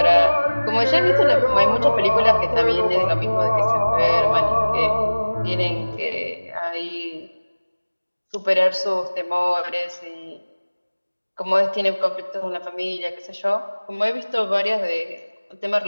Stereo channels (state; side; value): inverted; both; correlation -1.00